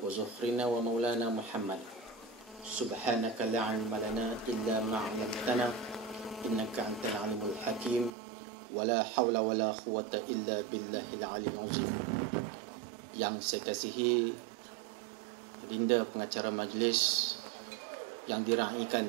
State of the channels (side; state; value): left; drops out; at 8.1 s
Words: Zukhrina wa Maulana Muhammad. Subhanaka la ilma lana illa ma 'allamtana innaka antal alimul hakim, wa la hawla wa la quwwata illa billahil aliyyil azim. Yang saya kasihi Dinda pengacara majlis yang diraikan